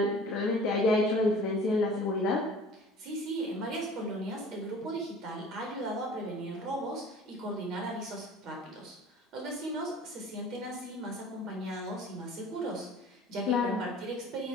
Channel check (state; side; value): normal; both; correlation 0.45